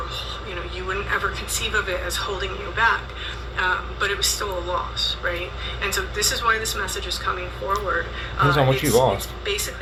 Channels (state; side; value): identical; both; correlation 1.00